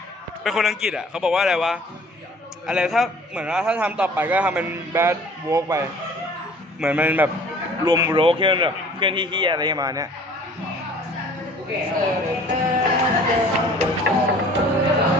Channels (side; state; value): both; normal; correlation 0.50